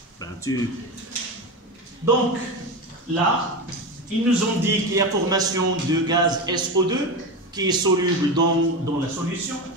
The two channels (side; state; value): both; normal; correlation 0.21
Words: Ben, Donc, là, ils nous ont dit qu'il y a formation de gaz SO2 qui est soluble dans la solution.